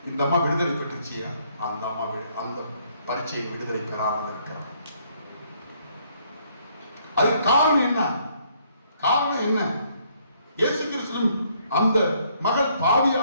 இந்த அம்மா விடுதலை பெற்றுச்சு. அந்த அம்மா அந்த பரீட்சையை விடுதலை பெறாமல் இருக்கிறான். அதுக்கு காரணம் என்ன? காரணம் என்ன? இயேசு கிறிஸ்து அந்த மகள்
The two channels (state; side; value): inverted; both; correlation -0.67